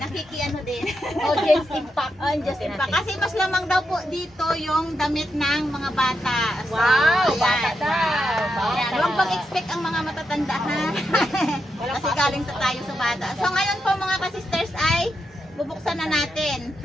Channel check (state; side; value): normal; both; correlation 0.85